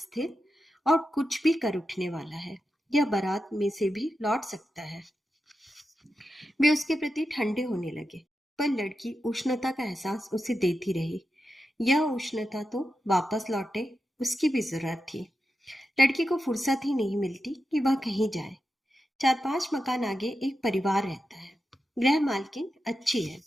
और कुछ भी कर उठने वाला है। यह बारात में से भी लौट सकता है। वे उसके प्रति ठंडे होने लगे, पर लड़की उष्णता का एहसास उसे देती रही। यह उष्णता तो वापस लौटे, उसकी भी जरूरत थी। लड़की को फुर्सत ही नहीं मिलती कि वह कहीं जाए। 4-5 मकान आगे एक परिवार रहता है। गृह मालकिन अच्छी है,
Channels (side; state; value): both; normal; correlation 0.89